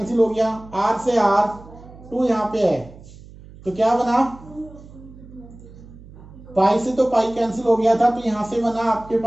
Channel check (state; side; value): noise; right; hum, 19 dB below the sound